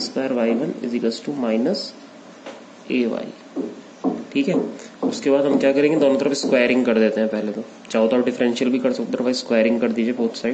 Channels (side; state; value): both; identical; correlation 1.00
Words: square y1 is equals to minus ay, ठीक है। उसके बाद हम क्या करेंगे, दोनों तरफ स्क्वायरिंग कर देते हैं। पहले तो चाहो तो आप डिफरेंशियल भी कर सकते हो, भाई स्क्वायरिंग कर दीजिए both